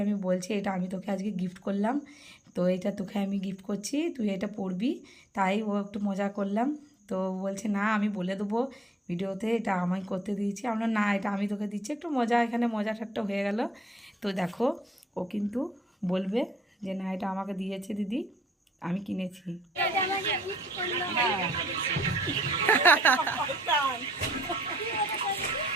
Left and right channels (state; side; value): normal; both; correlation 0.67